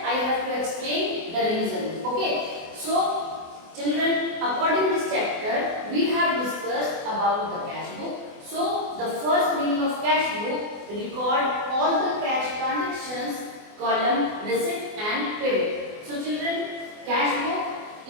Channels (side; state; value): left; late; 24 ms